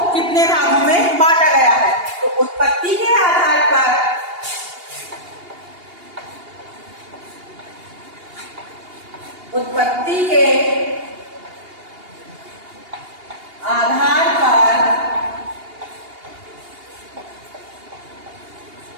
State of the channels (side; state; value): left; late; 2.8 ms